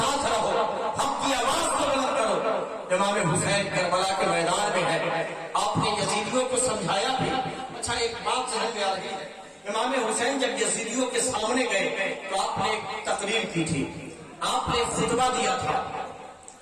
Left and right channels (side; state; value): both; identical; correlation 1.00